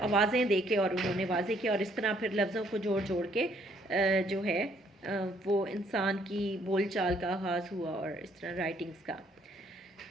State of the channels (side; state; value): both; normal; correlation 0.66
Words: आवाज़ें दे के और उन्होंने वाज़े किया और इस तरह फिर लफ्ज़ों को जोड़ जोड़ के जो है वो इंसान की बोलचाल का आगाज़ हुआ और इस तरह राइटिंग्स का।